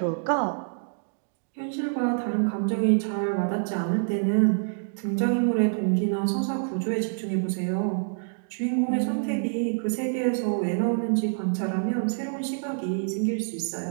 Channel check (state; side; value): silent; left; digital silence